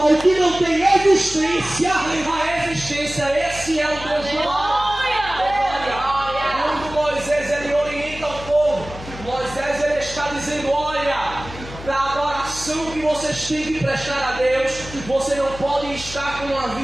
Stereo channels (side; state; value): left; noise; hum, 13 dB below the sound